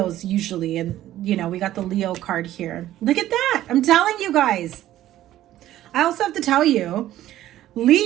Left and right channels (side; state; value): left; quieter; 13.6 dB